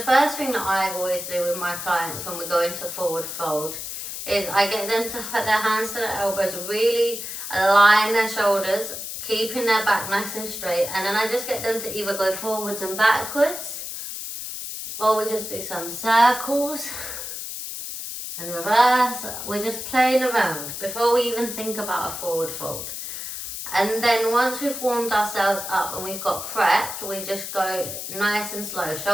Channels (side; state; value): left; noise; hiss, 7 dB below the sound